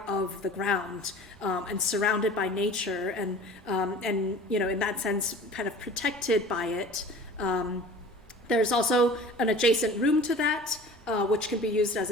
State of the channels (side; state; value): both; normal; correlation 0.43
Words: of the ground and surrounded by nature, and in that sense, kind of protected by it. There's also an adjacent room to that, which can be used as